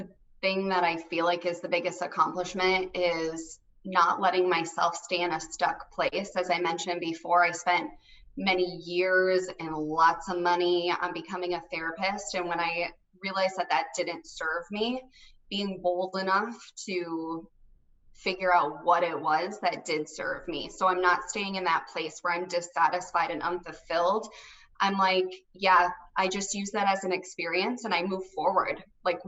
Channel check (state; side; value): identical; both; correlation 1.00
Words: thing that I feel like is the biggest accomplishment is not letting myself stay in a stuck place. As I mentioned before, I spent many years and lots of money on becoming a therapist. And when I realized that didn't serve me, being bold enough to figure out what it was that did serve me. So I'm not staying in that place where I'm dissatisfied and unfulfilled. I'm like, yeah, I just use that as an experience and I move forward. Like,